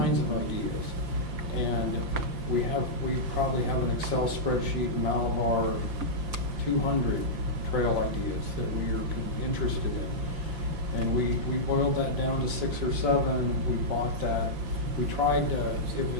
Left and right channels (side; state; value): left; late; 5.7 ms